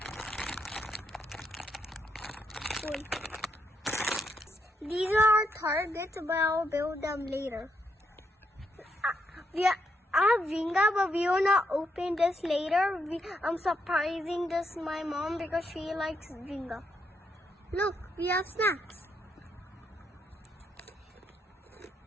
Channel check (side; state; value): both; normal; correlation 0.79